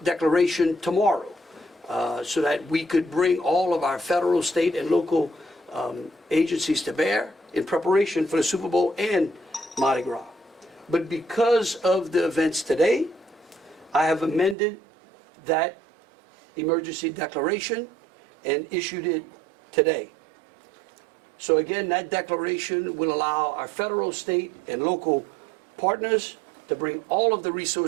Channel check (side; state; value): left; drops out; at 14.6 s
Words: declaration tomorrow so that we could bring all of our federal, state, and local agencies to bear in preparation for the Super Bowl and Mardi Gras. But because of the events today, I have amended that emergency declaration and issued it today. So again, that declaration will allow our federal, state, and local partners to bring all of the